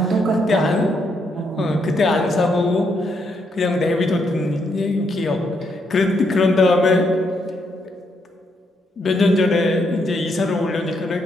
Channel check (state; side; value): normal; both; correlation 0.77